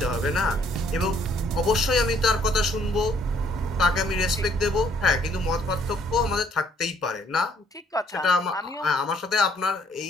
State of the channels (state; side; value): normal; both; correlation 0.64